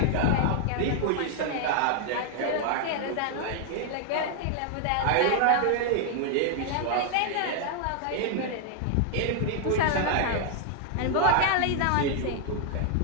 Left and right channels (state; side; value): different; both; correlation 0.00